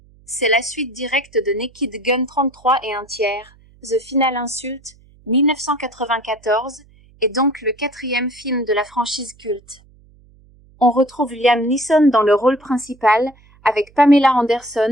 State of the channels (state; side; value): noise; right; hum, 28 dB below the sound